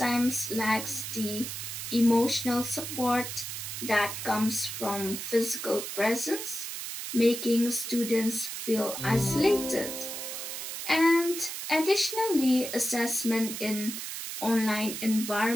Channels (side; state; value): right; noise; hiss, 6 dB below the sound